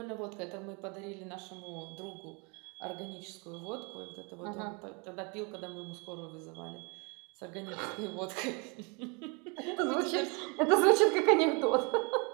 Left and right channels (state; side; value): quieter; left; 31.8 dB